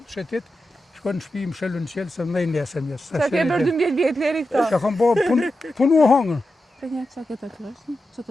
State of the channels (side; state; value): both; normal; correlation 0.90